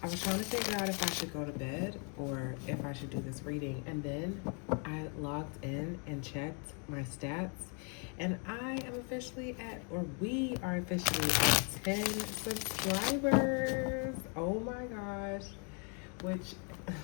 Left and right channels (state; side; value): quieter; right; 37.9 dB